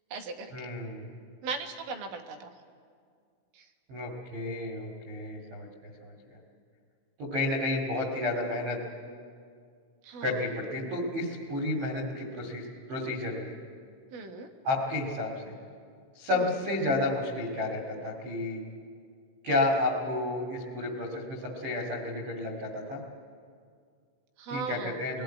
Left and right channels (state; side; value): late; left; 15 ms